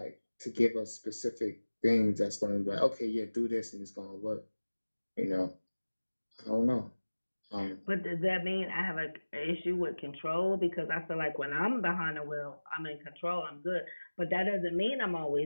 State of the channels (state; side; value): inverted; both; correlation -1.00